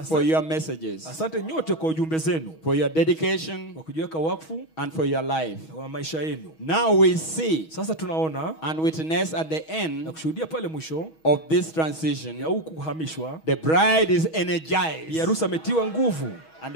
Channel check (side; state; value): right; late; 6.3 ms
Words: for your messages, Asante nyote kwa ujumbe zenu, for your dedication, kwa kujiweka wakfu and for your life. wa maisha yenu. Now we see Sasa tunaona and witness at the na end kushuhudia pale mwisho of this ya transition, huku kuhamishwa, the bride is bi energized. harusi ametiwa nguvu, And